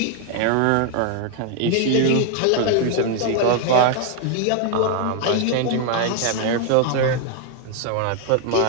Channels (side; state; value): both; different; correlation 0.00